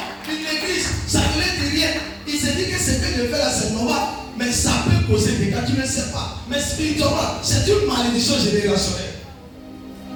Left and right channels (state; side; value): identical; both; correlation 1.00